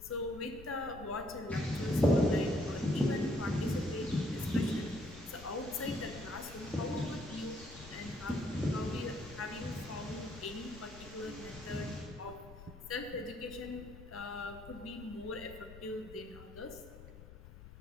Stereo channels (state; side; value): noise; left; rumble, 16 dB below the sound